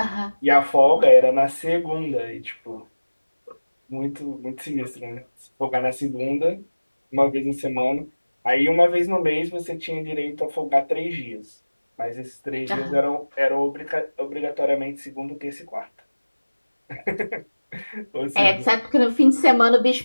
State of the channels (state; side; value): inverted; both; correlation -1.00